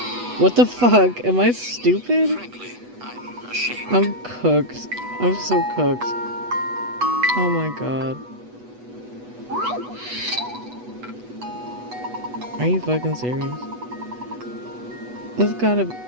What the fuck? Am I stupid? Frankly, I'm ashamed. I'm cooked. I'm so cooked. Oh my god. Are you fucking serious? This gotta...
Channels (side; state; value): left; late; 8.1 ms